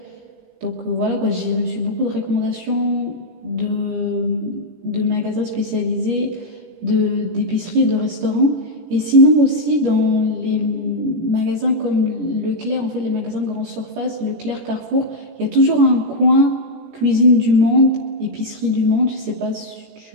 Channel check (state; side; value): late; left; 17 ms